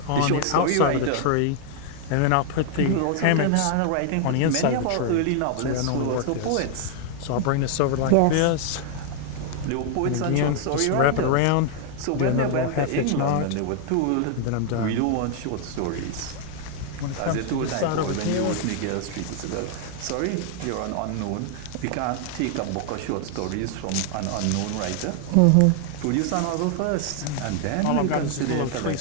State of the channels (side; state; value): both; different; correlation 0.00